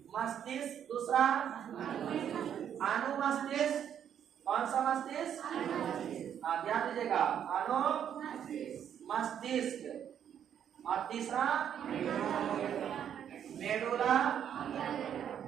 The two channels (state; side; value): quieter; left; 9.2 dB